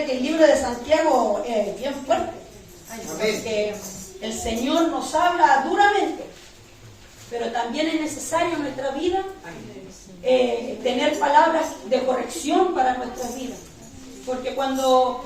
que el libro de Santiago es bien fuerte, porque el Señor nos habla duramente, pero también es necesario en nuestra vida tener palabras de corrección para nuestra vida, porque cuando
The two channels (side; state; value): both; identical; correlation 1.00